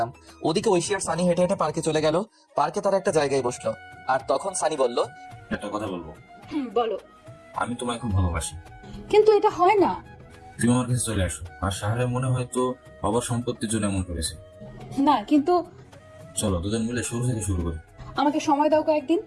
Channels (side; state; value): both; identical; correlation 1.00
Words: ওদিকে ঐশী আর সানি হেঁটে হেঁটে পার্কে চলে গেল। পার্কে তারা একটা জায়গায় বসলো, আর তখন সানি বলল, একটা কথা বলবো। বলো। আমি তোমায় খুব ভালোবাসি। কিন্তু এটা হয় না। তুমি আমার কাছে চলে আসো। আর সাহারে মনে হয় তো বাবার সম্পত্তির জন্য এমন করেছে। না কিন্তু চলো দুজন মিলে শুরু থেকে শুরু করি। আমাকে সময় দাও কয়েকদিন।